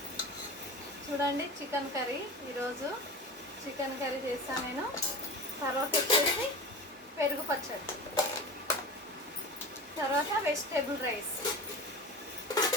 చూడండి, చికెన్ కర్రీ. ఈరోజు చికెన్ కర్రీ చేస్తాను నేను. తర్వాత వచ్చేసి పెరుగు పచ్చడి, తర్వాత వెజిటేబుల్ రైస్.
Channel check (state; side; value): normal; both; correlation 0.32